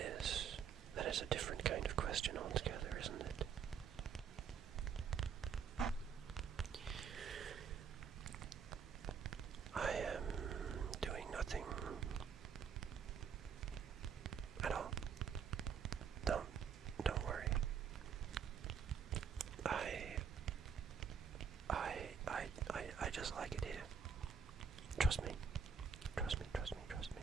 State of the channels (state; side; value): quieter; left; 6.8 dB